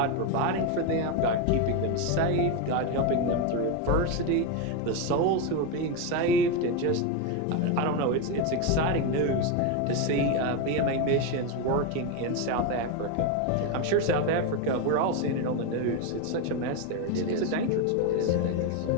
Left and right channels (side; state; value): both; different; correlation 0.03